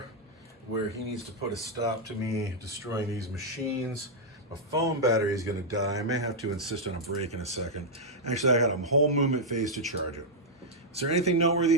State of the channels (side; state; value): both; normal; correlation -0.05